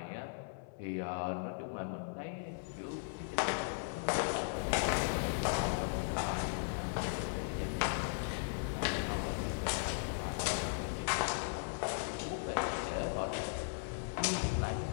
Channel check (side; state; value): right; silent; 53 dB below the other